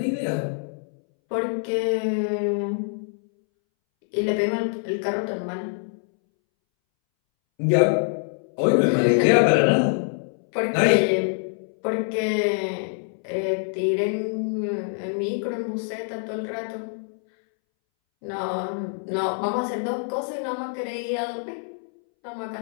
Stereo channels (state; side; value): silent; right; 62 dB below the other